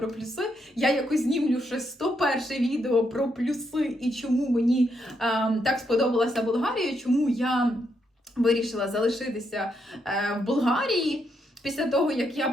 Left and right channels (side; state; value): both; normal; correlation 0.78